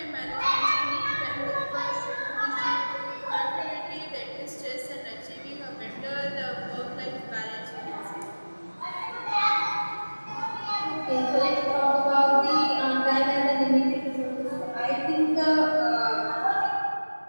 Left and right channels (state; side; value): inverted; both; correlation -1.00